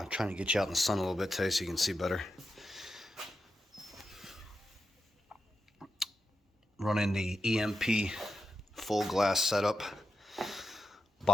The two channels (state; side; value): normal; both; correlation 0.88